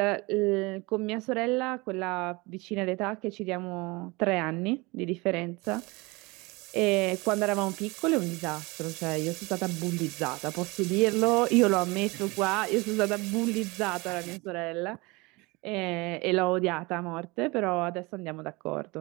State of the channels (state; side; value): quieter; left; 24.8 dB